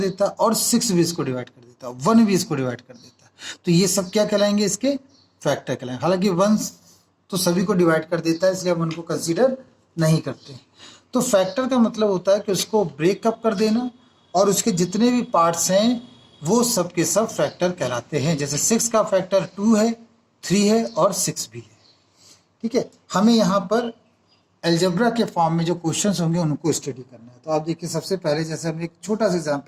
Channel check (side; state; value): both; identical; correlation 1.00